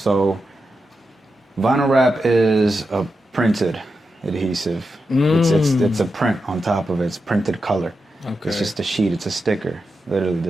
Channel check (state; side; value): normal; both; correlation 0.88